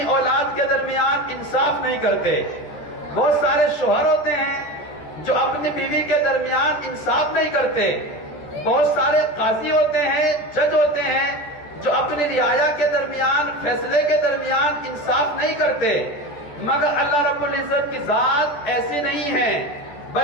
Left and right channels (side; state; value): right; late; 13 ms